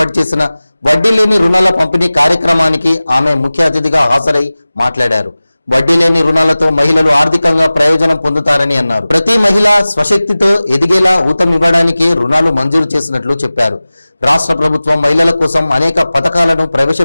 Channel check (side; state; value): both; inverted; correlation -0.98